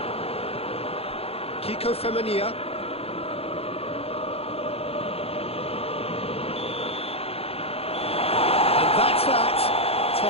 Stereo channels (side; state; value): right; late; 0.29 ms